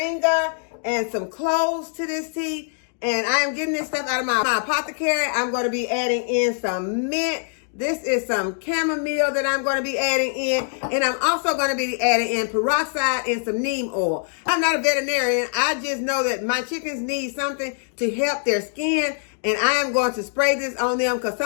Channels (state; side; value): silent; right; digital silence